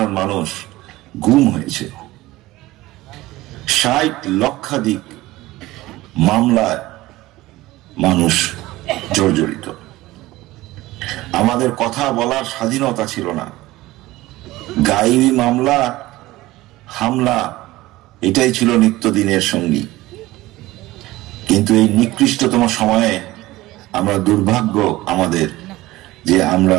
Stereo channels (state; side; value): quieter; left; 18.1 dB